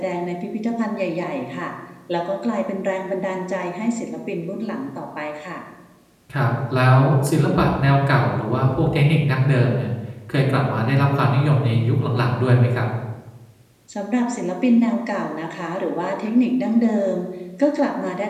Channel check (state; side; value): identical; both; correlation 1.00